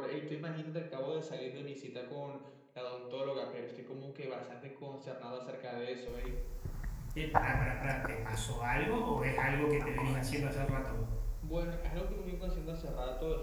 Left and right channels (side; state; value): both; identical; correlation 1.00